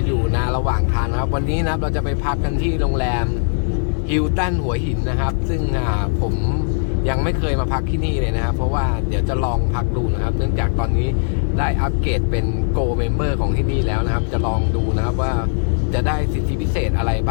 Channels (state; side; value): silent; right; digital silence